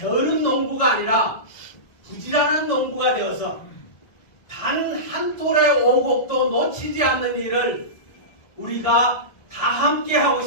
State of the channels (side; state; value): right; late; 1.6 ms